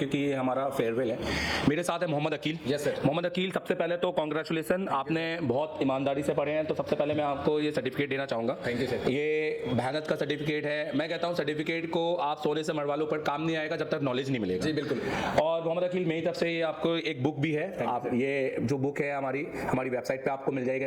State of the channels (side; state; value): both; identical; correlation 1.00